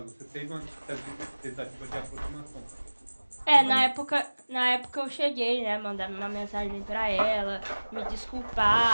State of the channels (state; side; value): inverted; both; correlation -1.00